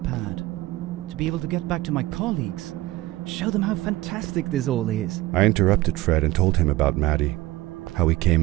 pad to be able to get back to my colleagues, show them how fantastic this all is. I interrupted Fred and told him about Maddie, how we came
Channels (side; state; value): left; quieter; 18.4 dB